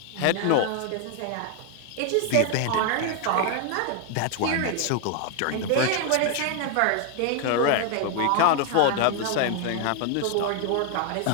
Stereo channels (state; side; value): different; both; correlation 0.00